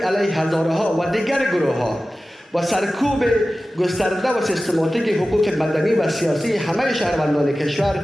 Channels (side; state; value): both; normal; correlation 0.95